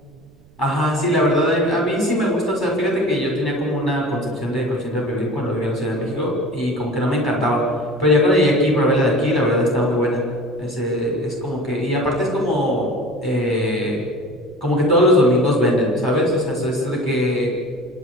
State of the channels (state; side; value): noise; right; rumble, 28 dB below the sound